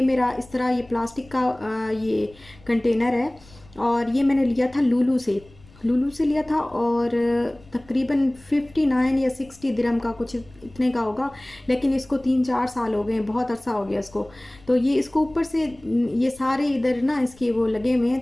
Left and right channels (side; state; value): left; noise; rumble, 25 dB below the sound